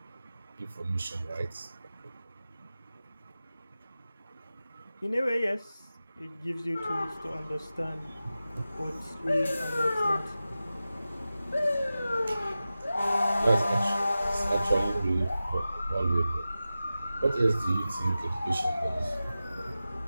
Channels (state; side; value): inverted; both; correlation -0.94